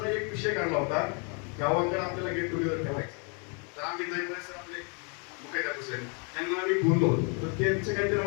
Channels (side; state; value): right; quieter; 36.4 dB